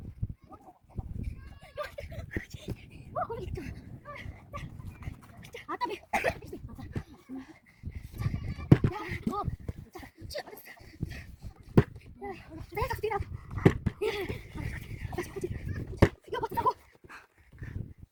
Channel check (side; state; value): both; identical; correlation 1.00